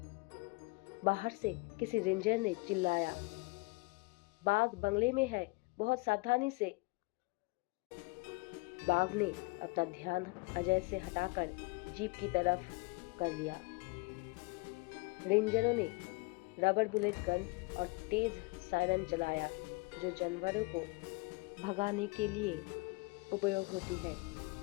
बाहर से किसी रेंजर ने चिल्लाया, बाघ बंगले में है, बहुत सावधानी से। बाघ ने अपना ध्यान अजय से हटाकर जीप की तरफ कर लिया। रेंजरों ने रबर बुलेट गन और तेज सायरन चलाया जो जानवरों को भगाने के लिए उपयोग होती है।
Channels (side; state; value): right; quieter; 27.0 dB